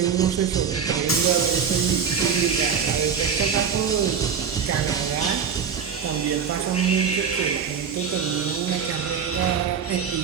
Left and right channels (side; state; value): left; quieter; 6.8 dB